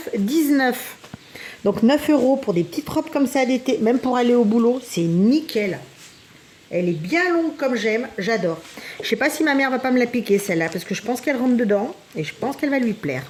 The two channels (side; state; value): both; identical; correlation 1.00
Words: 9,19. Donc 9 € pour des petites robes comme ça d'été, même pour aller au boulot, c'est nickel. Elle est bien longue comme j'aime, j'adore. Je sais pas si ma mère va pas me la piquer celle-là, parce que je pense qu'elle rentre dedans et je pense qu'elle va lui plaire.